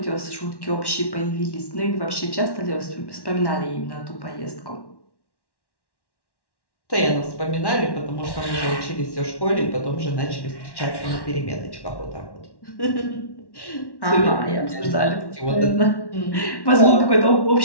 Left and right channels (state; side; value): late; right; 1.1 ms